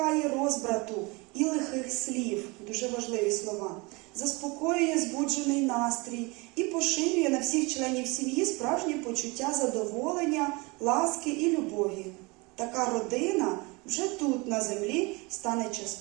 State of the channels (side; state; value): left; quieter; 26.5 dB